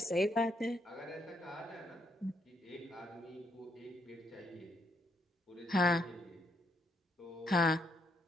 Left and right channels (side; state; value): both; normal; correlation 0.75